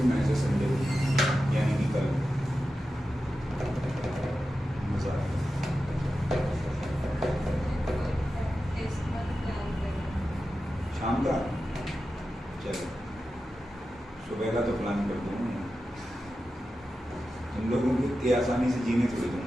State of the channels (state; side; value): normal; both; correlation 0.92